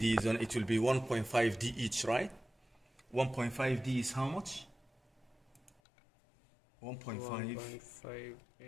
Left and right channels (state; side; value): drops out; right; at 5.8 s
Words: then it will be 1.5D each, right? 1.5D is how much? 1.5